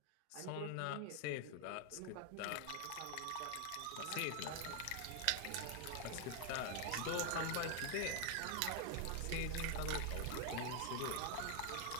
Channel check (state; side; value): different; both; correlation 0.01